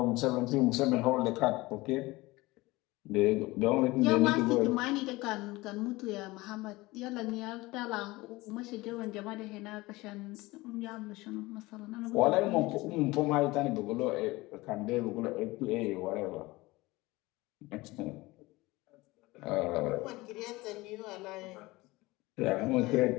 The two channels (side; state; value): right; quieter; 20.9 dB